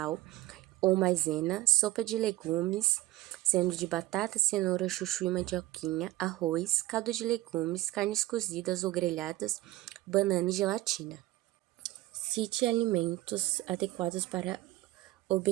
ou maisena, sopa de legumes, sendo de batata, cenoura, chuchu e mandioquinha, arroz, caldo de legumes, carnes cozidas ou grelhadas, banana e gelatina. Cite alimentos adequados para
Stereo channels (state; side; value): quieter; left; 17.1 dB